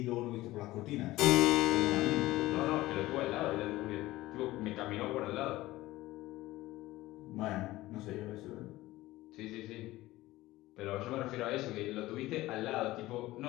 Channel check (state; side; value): quieter; right; 17.5 dB